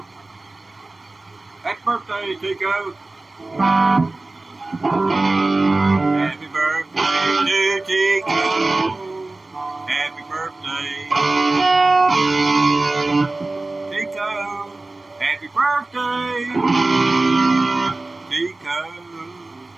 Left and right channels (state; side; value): quieter; left; 3.1 dB